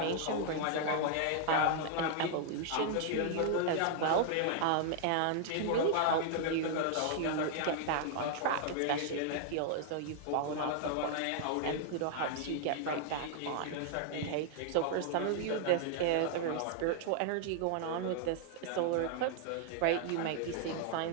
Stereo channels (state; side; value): different; both; correlation -0.01